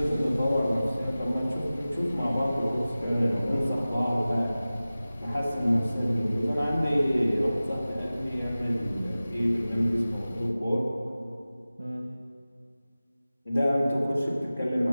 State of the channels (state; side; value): inverted; both; correlation -0.97